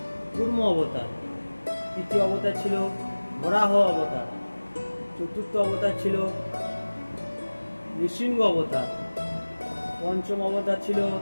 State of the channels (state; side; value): inverted; both; correlation -1.00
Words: কুর্ম অবতার, তৃতীয় অবতার ছিল বরাহ অবতার, চতুর্থ অবতার ছিল নৃসিংহ অবতার, পঞ্চম অবতার ছিল